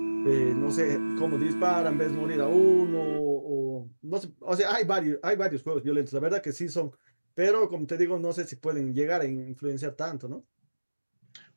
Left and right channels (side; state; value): both; inverted; correlation -1.00